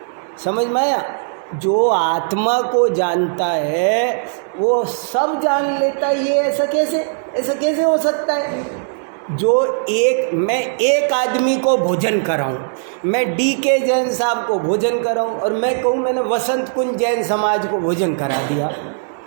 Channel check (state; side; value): silent; left; 63 dB below the other